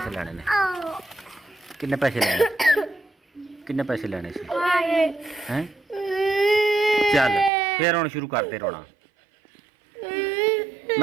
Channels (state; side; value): drops out; left; at 7.5 s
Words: लेने ने? किन्ने पैसे लेने? किन्ने पैसे लेने हैं? चल फिर हुण शुरू करते रोना।